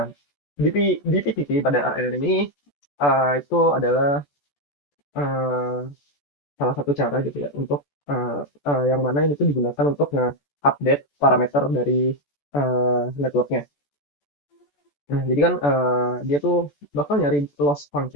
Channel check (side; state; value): right; late; 14 ms